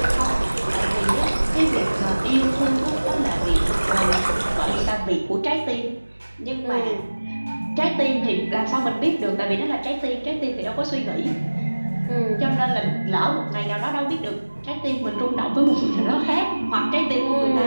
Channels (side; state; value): both; inverted; correlation -1.00